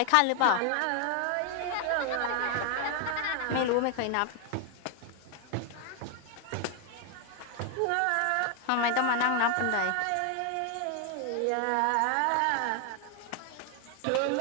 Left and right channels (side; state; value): both; different; correlation 0.00